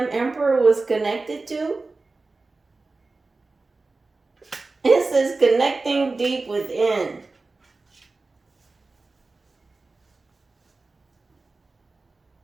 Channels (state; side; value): quieter; left; 3.6 dB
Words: emperor was connected to? It says connecting deep within.